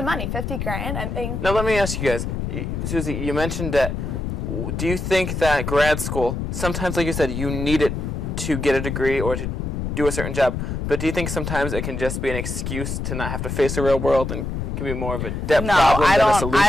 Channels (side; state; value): left; noise; rumble, 3 dB below the sound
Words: money, 50 grand. I mean. Now let me ask you guys, Suzy, you mentioned that, do you think that grad school, sometimes like you said, you need it to get a degree or to do a certain job, but do you think sometimes it can just be an excuse to not have to face the real world and can be more of a debt problem than a solution?